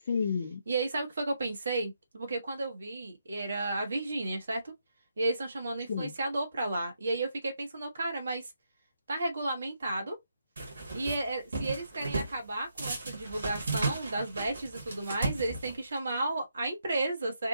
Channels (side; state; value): both; inverted; correlation -0.80